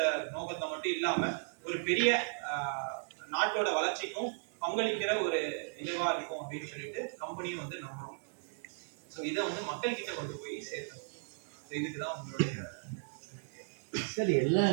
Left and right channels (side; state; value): left; silent; 54 dB below the other